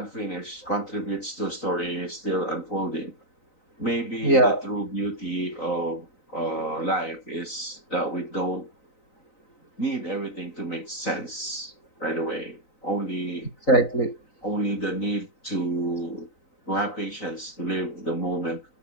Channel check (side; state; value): right; late; 3.9 ms